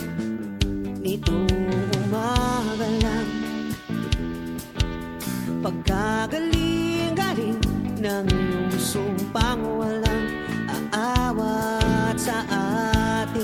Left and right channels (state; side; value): identical; both; correlation 1.00